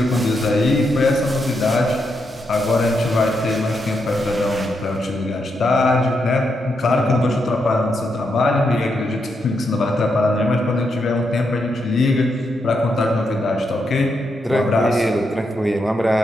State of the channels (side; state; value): both; normal; correlation 0.82